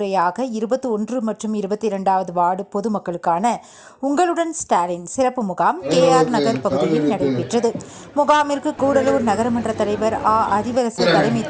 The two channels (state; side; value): identical; both; correlation 1.00